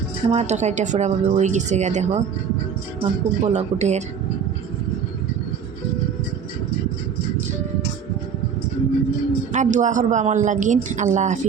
আমার তরকারিটা পুরাভাবে হয়ে গেছে গা, দেখো আমার খুব বলক উঠের। আর দোয়া করবা আমার লাগিন। আল্লাহ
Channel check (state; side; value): quieter; left; 7.1 dB